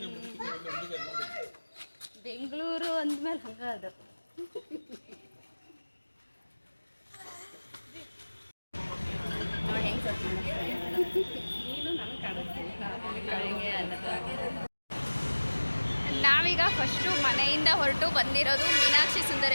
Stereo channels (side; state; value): both; inverted; correlation -1.00